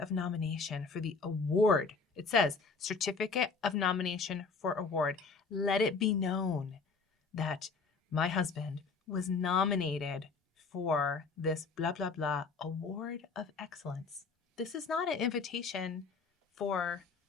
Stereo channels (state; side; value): quieter; right; 4.7 dB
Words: of nomination for the award. It says, certificate of nomination for award. Let it be known that my husband was nominated for this blah, blah, blah award of excellence. This is not an invitation for